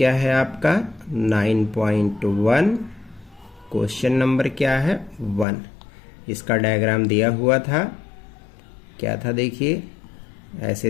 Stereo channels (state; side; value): drops out; right; at 5.5 s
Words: है आपका 9.1, क्वेश्चन नंबर क्या है 1। इसका डायग्राम दिया हुआ था, क्या था देखिए,